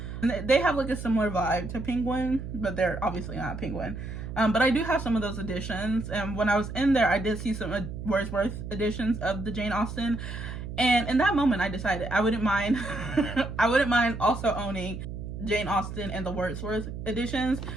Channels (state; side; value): noise; right; hum, 8 dB below the sound